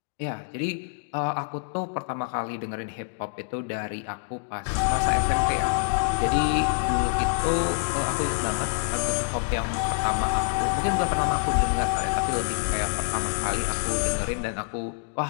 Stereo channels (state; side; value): silent; right; 61 dB below the other